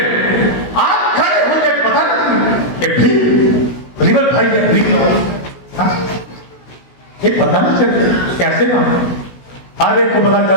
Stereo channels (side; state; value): right; late; 16 ms